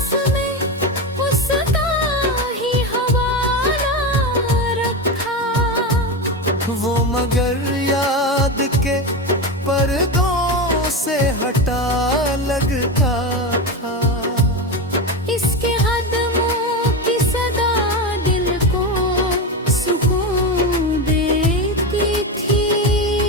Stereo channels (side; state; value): both; normal; correlation 0.17